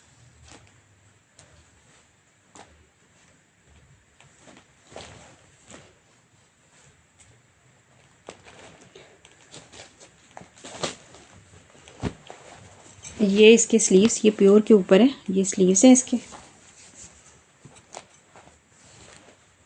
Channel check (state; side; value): identical; both; correlation 1.00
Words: ये इसके स्लीव्स, ये प्योर के ऊपर है, ये स्लीव्स हैं इसके।